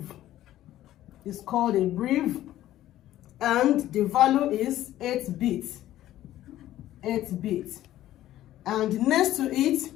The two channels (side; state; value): right; quieter; 13.7 dB